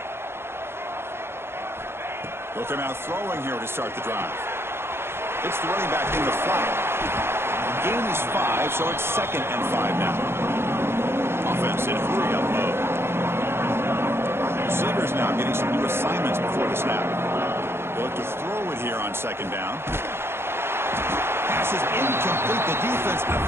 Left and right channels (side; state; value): left; late; 0.12 ms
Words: They'll come out throwing here to start the drive. It's the running back in the flat. Gain is 5, so it's 2nd and 5 now. Offense in hurry-up mode. Receivers now getting some new assignments before the snap. They'll look to throw it here on 2nd down. Pass is incomplete. The defense